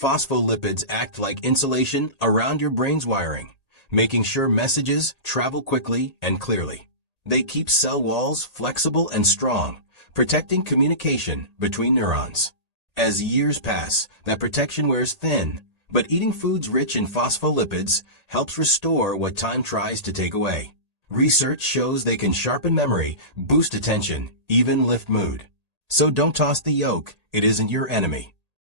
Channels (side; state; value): left; late; 1.8 ms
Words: act like insulation around your brain's wiring, making sure messages travel quickly and clearly. They keep cell walls flexible and strong, protecting communication between neurons. As years pass, that protection wears thin, but eating foods rich in phospholipids helps restore what time tries to take away. Research shows they can sharpen memory, boost attention, even lift mood. So don't toss the yolk, it isn't your enemy.